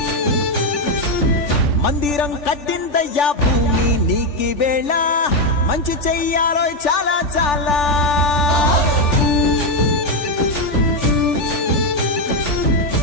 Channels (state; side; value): late; right; 3.4 ms